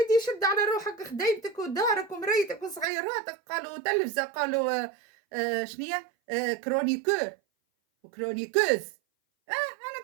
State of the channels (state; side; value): drops out; left; at 2.9 s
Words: شد على روحك خديتك ودارك ومريتك وصغيراتك، قالوا تلفزة، قالوا شنية كرونيكور وكرونيكوز. انا